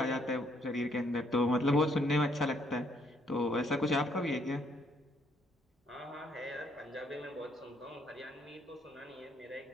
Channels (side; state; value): both; normal; correlation 0.69